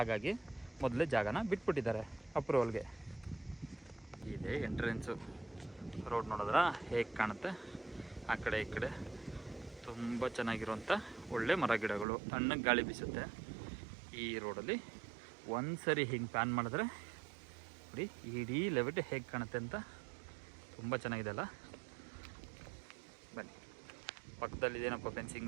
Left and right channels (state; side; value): drops out; left; at 12.1 s